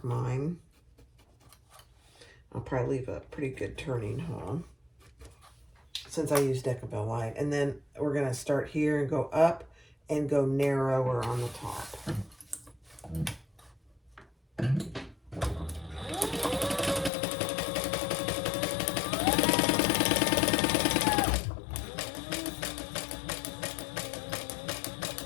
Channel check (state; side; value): drops out; right; at 17.1 s